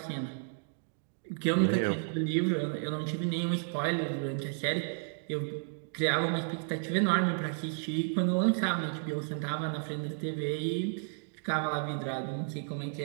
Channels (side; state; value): left; silent; digital silence